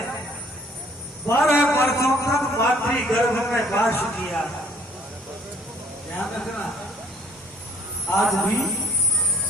12 वर्षों तक मातृ गर्भ में वास किया। ध्यान रखना, आज भी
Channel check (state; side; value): normal; both; correlation 0.58